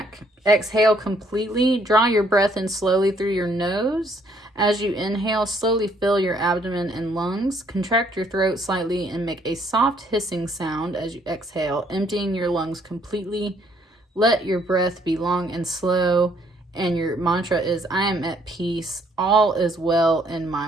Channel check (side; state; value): both; normal; correlation 0.66